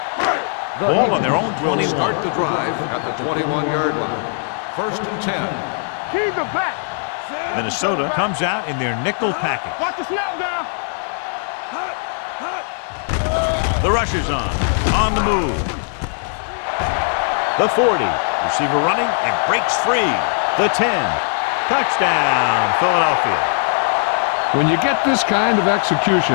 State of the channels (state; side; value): silent; right; 66 dB below the other